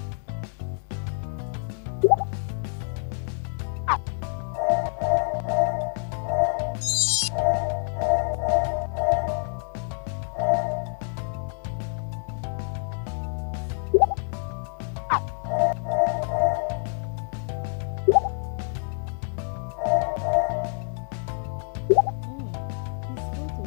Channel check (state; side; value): silent; right; 60 dB below the other